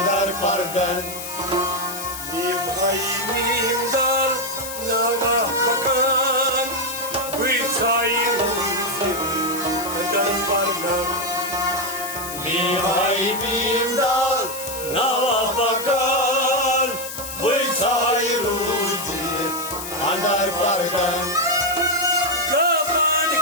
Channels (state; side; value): noise; left; hiss, 8 dB below the sound